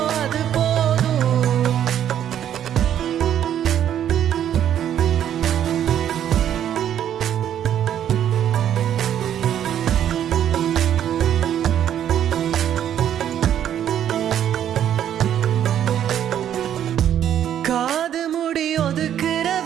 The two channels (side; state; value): left; quieter; 10.2 dB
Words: அது போதும் காது முடி ஒதுக்குற